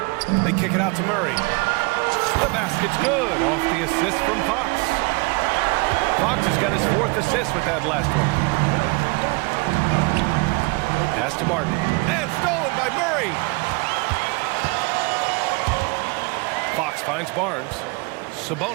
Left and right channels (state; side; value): quieter; left; 27.9 dB